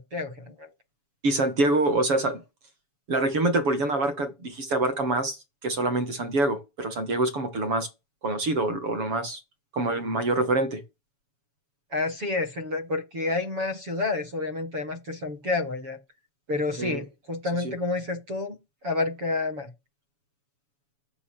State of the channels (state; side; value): late; left; 7.1 ms